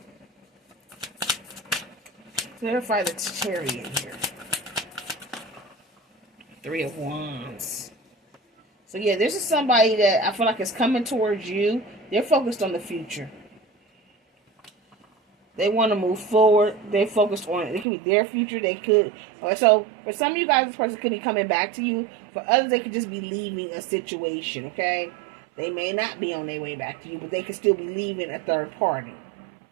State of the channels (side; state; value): left; drops out; at 17.9 s